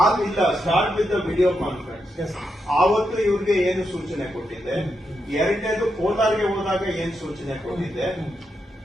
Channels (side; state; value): both; normal; correlation 0.84